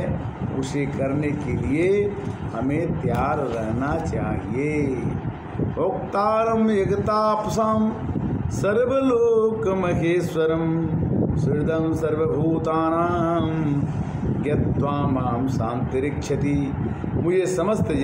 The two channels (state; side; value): identical; both; correlation 1.00